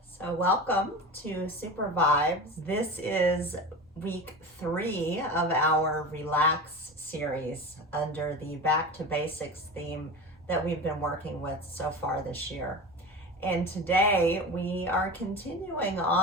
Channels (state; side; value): normal; both; correlation 0.29